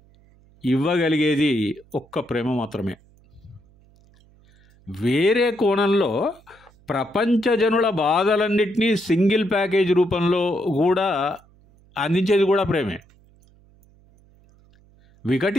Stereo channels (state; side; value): noise; right; hum, 30 dB below the sound